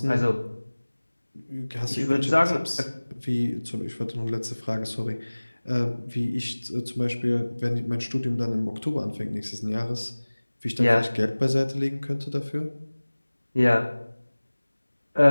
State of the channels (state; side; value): inverted; both; correlation -1.00